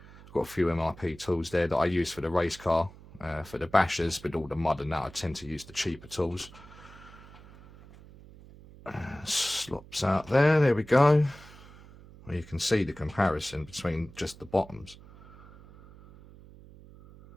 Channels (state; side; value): noise; right; hum, 20 dB below the sound